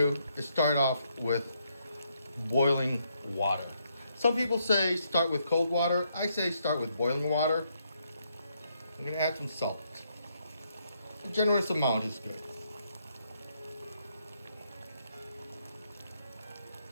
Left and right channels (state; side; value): inverted; both; correlation -0.75